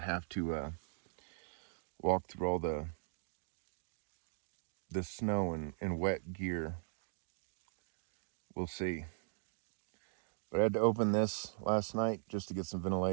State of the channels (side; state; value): left; silent; digital silence